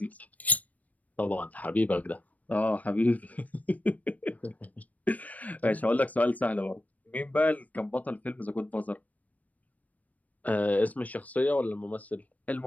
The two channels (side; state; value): right; late; 0.072 ms